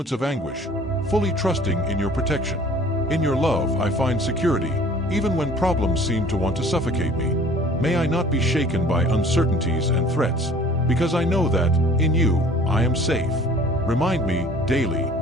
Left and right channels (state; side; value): normal; both; correlation 0.50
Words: of anguish, fully trusting in your protection. In your love I find security, even when problems seem to want to suffocate me. May I not be shaken by uncertainties and threats, because I know that, in you, I am safe. Remind me, daily,